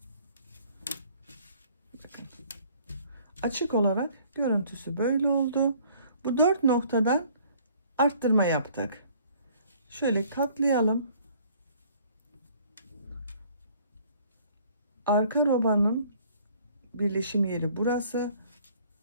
açık olarak görüntüsü böyle oldu. Bu 4 noktadan arttırma yaptık. Şöyle katlayalım. Arka robanın birleşim yeri burası.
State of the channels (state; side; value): inverted; both; correlation -0.57